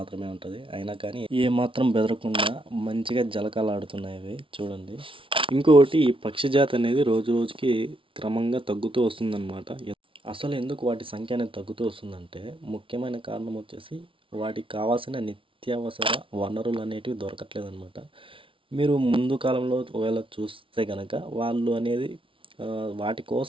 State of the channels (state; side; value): late; left; 0.25 ms